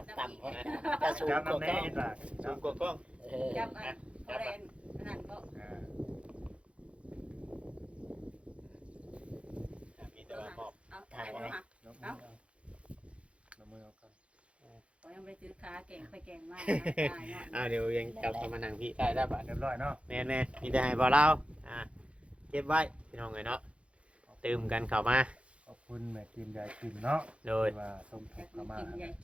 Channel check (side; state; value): left; late; 0.061 ms